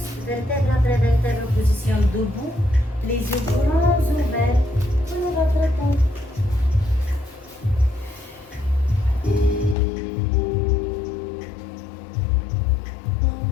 Vertèbre après vertèbre, position debout. Les yeux grands ouverts. Prenez votre temps.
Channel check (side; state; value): right; drops out; at 9.8 s